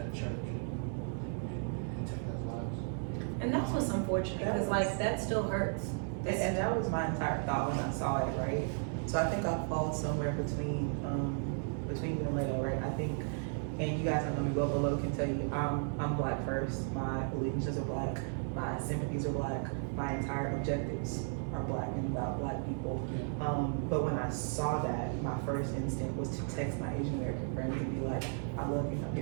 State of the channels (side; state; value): left; silent; 55 dB below the other